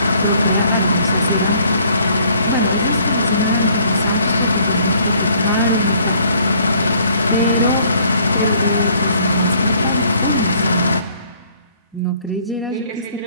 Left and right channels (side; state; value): both; inverted; correlation -0.61